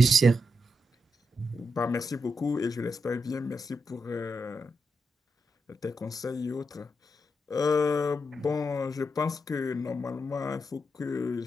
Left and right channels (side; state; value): both; normal; correlation 0.83